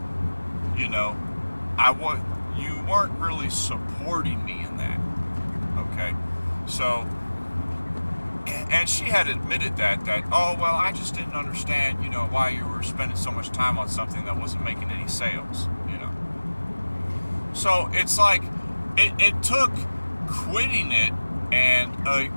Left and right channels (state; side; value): inverted; both; correlation -1.00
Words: you know, you weren't really supporting me in that. Okay, so, and she had admitted that oh, well, I just didn't understand, you know, why you were spending so much time on something that wasn't making any sales, you know. So it's like it took quitting it and